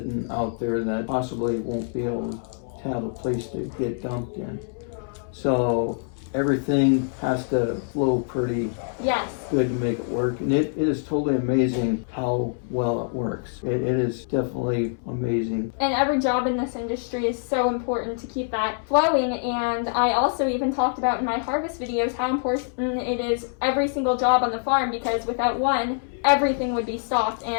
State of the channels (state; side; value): silent; right; 62 dB below the other